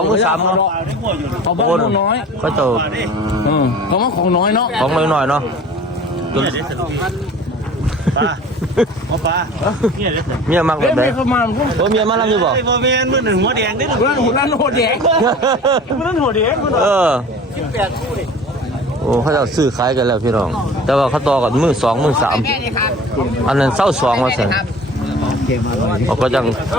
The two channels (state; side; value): normal; both; correlation 0.43